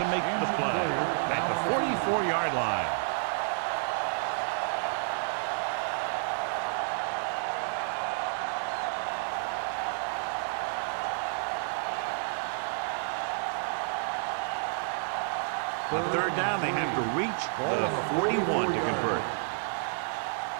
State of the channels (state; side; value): silent; left; 58 dB below the other